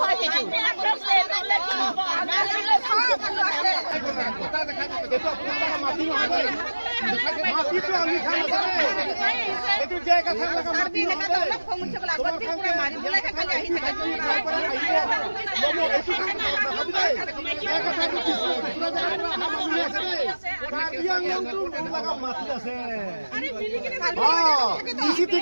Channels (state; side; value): inverted; both; correlation -1.00